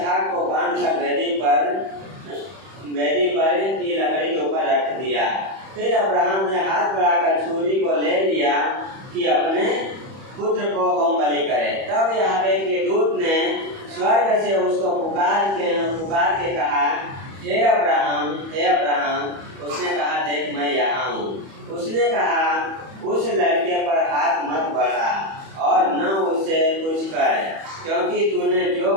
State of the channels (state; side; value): late; left; 31 ms